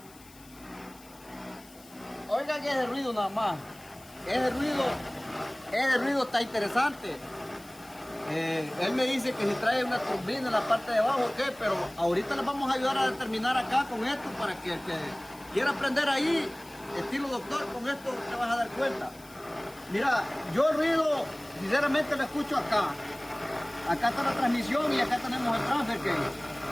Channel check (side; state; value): left; noise; hiss, 23 dB below the sound